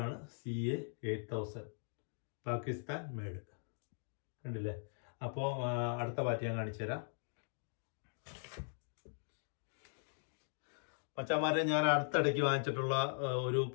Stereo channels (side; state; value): right; silent; digital silence